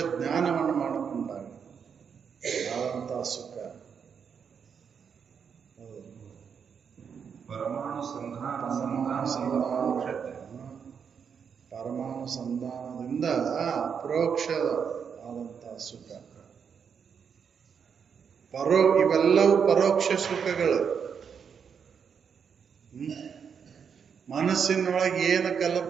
ಜ್ಞಾನವನ್ನು ಮಾಡಿಕೊಂಡಾಗ ಆದಂತ ಸುಖ. ಪರಮಾಣು ಪರಮಾಣು ಸಂಧಾನದಿಂದ ಅಪ್ರೋಕ್ಷ ಆದಂತ ಸುಖ. ಇವೆಲ್ಲವೂ ಪರೋಕ್ಷ ಸುಖಗಳು. ಮನಸ್ಸಿನೊಳಗೆ ಏನು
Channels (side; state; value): left; quieter; 6.9 dB